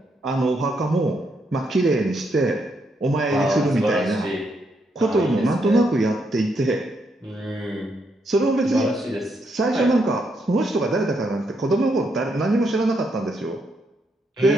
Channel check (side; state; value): both; normal; correlation 0.78